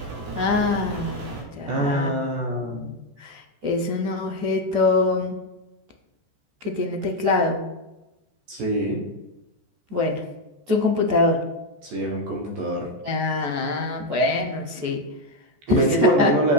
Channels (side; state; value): left; late; 14 ms